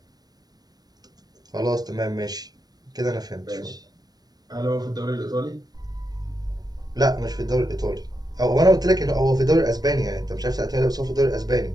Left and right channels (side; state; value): left; late; 0.19 ms